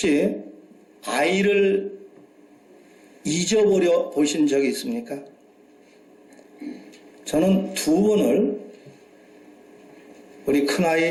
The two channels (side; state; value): both; identical; correlation 1.00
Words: 아이를 잊어버려 보신 적이 있습니까? 저는 2번을 우리